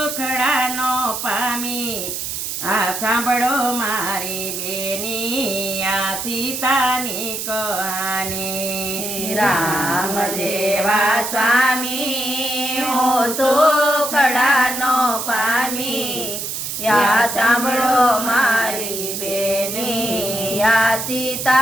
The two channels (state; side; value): noise; right; hiss, 4 dB below the sound